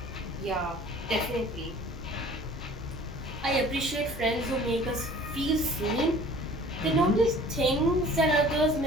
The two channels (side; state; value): both; normal; correlation 0.48